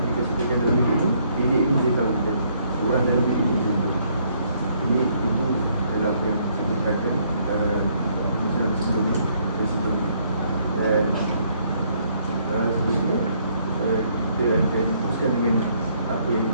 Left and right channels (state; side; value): inverted; both; correlation -0.68